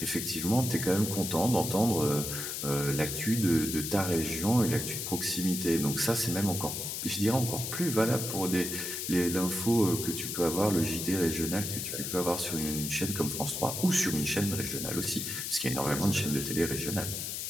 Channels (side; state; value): left; noise; hiss, 4 dB below the sound